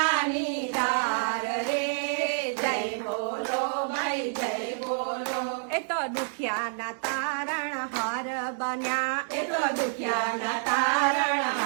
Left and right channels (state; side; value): silent; left; digital silence